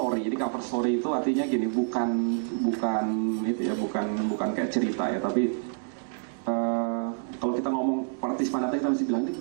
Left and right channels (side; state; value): left; silent; digital silence